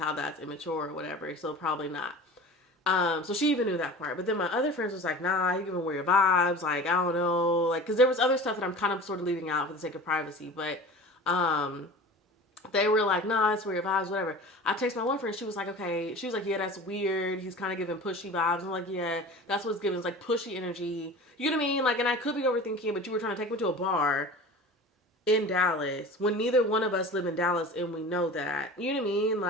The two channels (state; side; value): normal; both; correlation 0.37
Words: that's immature or whatever. So probably not. So she even knew that part. But then my other friends was like, nah, you giving weird vibes. Like, I don't know. Like, because there was other stuff that I'm kind of sort of leaving out for the sake of privacy. But they were like, nah, that's weird vibes, whatever. I text my one friend. She was like, okay. She was like, yeah, that's weird. He's kind of giving pushy vibes. I'm like, yeah, that's what's giving. It's like pushy energy. You know what I mean? Like, and I could be overthinking, but you were trying to take me to a bar in Dallas when neither one of us live in Dallas, and we know that. You know what I mean?